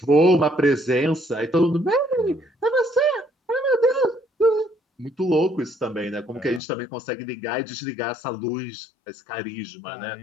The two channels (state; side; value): drops out; right; at 6.6 s